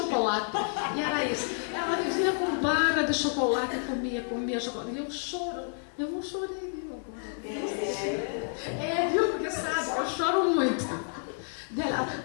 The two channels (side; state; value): right; silent; 58 dB below the other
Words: E era isso. Ela vivia com barra de chocolate e comia chocolate. E eu não chorei, viu, agora. Viu, porque sabe, eu choro muito.